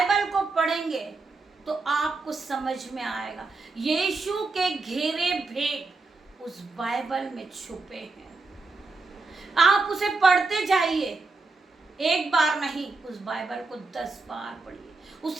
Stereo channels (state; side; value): quieter; left; 3.7 dB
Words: को पढ़ेंगे तो आपको समझ में आएगा यीशु के गहरे भेद उस बाइबल में छुपे हैं। आप उसे पढ़ते जाइए, एक बार नहीं, उस बाइबल को 10 बार पढ़िए,